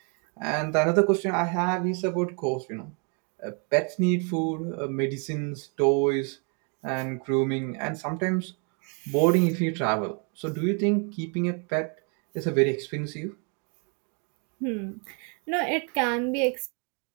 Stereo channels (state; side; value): quieter; left; 37.6 dB